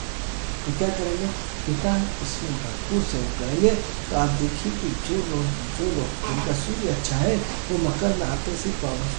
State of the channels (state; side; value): silent; left; 55 dB below the other